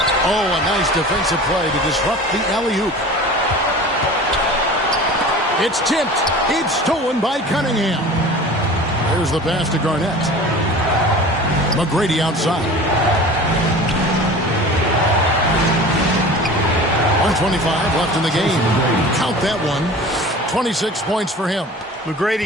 Oh, a nice defensive play to disrupt the alley-oop. It's tipped. It's stolen by Cunningham. There's the pass to Garnett. McGrady outside. 1:25 left in the game. Count that one. 26 points for him.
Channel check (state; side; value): normal; both; correlation 0.39